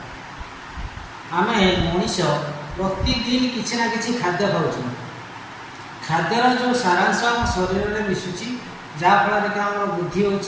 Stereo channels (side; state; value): both; identical; correlation 1.00